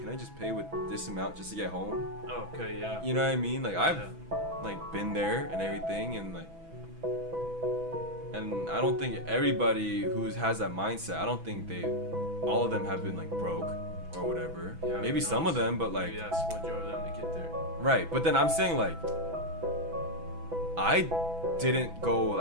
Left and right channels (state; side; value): late; left; 6.1 ms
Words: I just pay with this amount just to get home? Okay, yeah. You know what I mean? Like I've like been there and everything, and like, and I don't think everybody who has that mindset, I don't think all of them have been like broke or whatever. Yeah, maybe some of them, but like, maybe that's what drove them to get there. right. But then I'm saying like, I didn't go